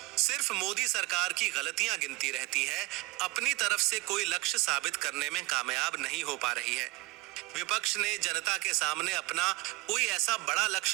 सिर्फ मोदी सरकार की गलतियां गिनती रहती है, अपनी तरफ से कोई लक्ष्य साबित करने में कामयाब नहीं हो पा रही है। विपक्ष ने जनता के सामने अपना कोई ऐसा बड़ा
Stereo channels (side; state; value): left; quieter; 21.5 dB